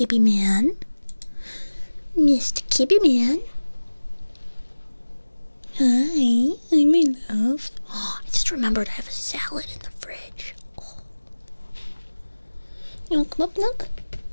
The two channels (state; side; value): inverted; both; correlation -1.00